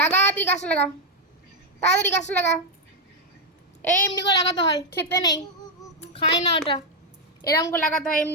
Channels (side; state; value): both; normal; correlation 0.02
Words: লাগা তুই গাছটা লাগা, তাড়াতাড়ি গাছটা লাগা। এই এমনি করে লাগাতে হয়, খেতে নেই, খাই না ওটা। এরকম করে লাগাতে হয়,